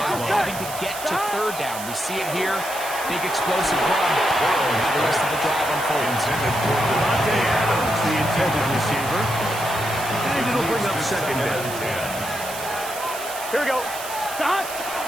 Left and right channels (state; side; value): noise; right; hiss, 10 dB below the sound